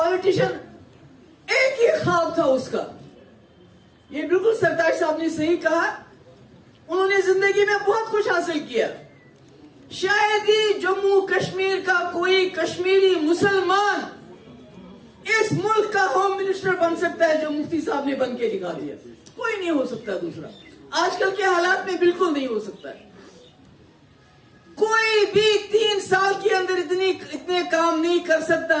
एक ही ख्वाब था उसका, ये बिल्कुल सरताज साहब ने सही कहा, उन्होंने जिंदगी में बहुत कुछ हासिल किया। शायद ही जम्मू कश्मीर का कोई कश्मीरी मुसलमान इस मुल्क का होम मिनिस्टर बन सकता है जो मुफ्ती साहब ने बन के दिखा दिया। कोई नहीं हो सकता दूसरा, आजकल के हालात में बिल्कुल नहीं हो सकता है। कोई भी 3 साल के अंदर इतने काम नहीं कर सकता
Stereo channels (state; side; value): identical; both; correlation 1.00